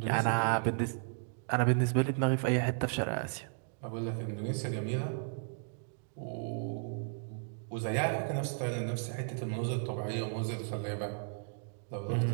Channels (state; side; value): silent; left; digital silence